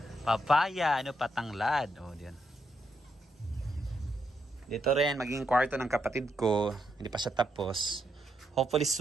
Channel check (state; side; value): normal; both; correlation 0.79